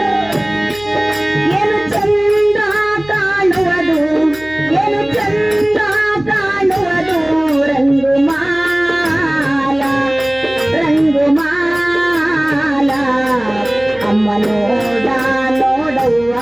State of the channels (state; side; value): noise; right; hum, 21 dB below the sound